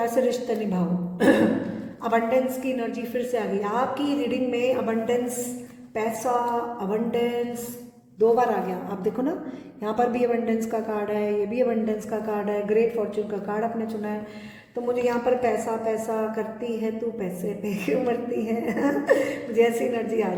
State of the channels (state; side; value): identical; both; correlation 1.00